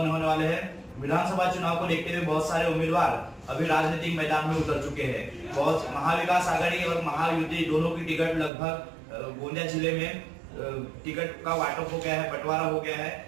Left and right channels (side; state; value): left; drops out; at 8.5 s